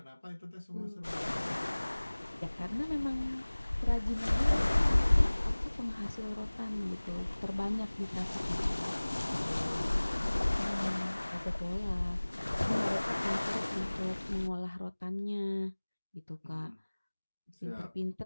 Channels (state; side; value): inverted; both; correlation -1.00